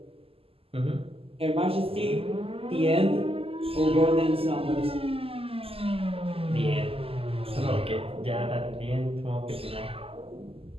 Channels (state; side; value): late; left; 0.28 ms